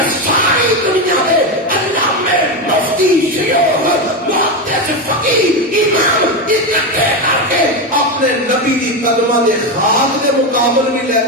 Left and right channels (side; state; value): both; normal; correlation 0.13